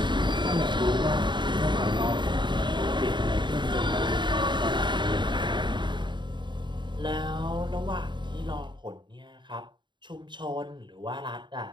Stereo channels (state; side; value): late; left; 0.22 ms